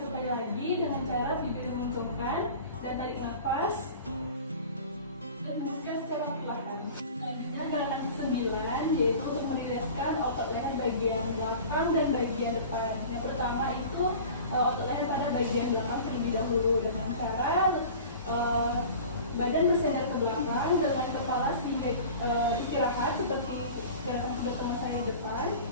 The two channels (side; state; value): both; inverted; correlation -0.40